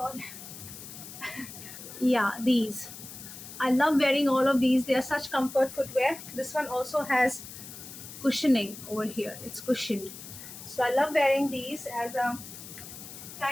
Yeah, these. I love wearing all of these. They are such comfort footwear. This one also has cushioning over here. It's cushioned. So I love wearing these as a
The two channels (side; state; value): left; noise; hiss, 13 dB below the sound